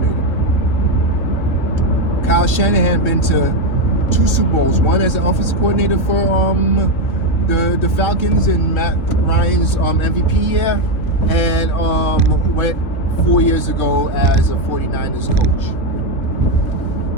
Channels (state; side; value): late; right; 2.9 ms